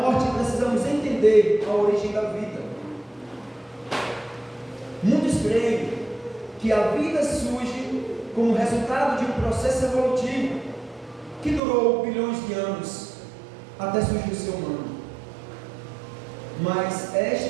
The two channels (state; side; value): drops out; left; at 11.6 s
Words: precisamos entender a origem da vida. Muitos creem que a vida surge como resultado de um processo evolutivo que durou bilhões de anos até surgir o ser humano. Mas